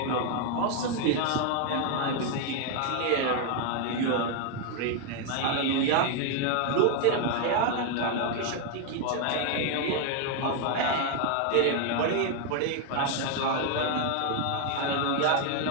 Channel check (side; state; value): both; different; correlation 0.00